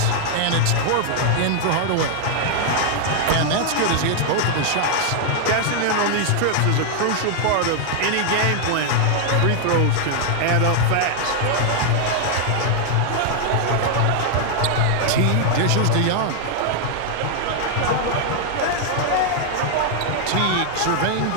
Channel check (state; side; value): different; both; correlation 0.00